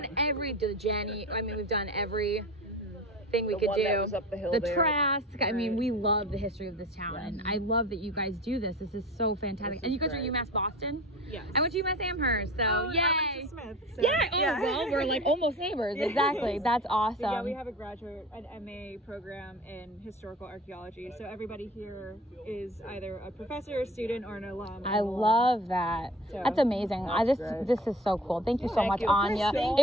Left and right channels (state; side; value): normal; both; correlation 0.38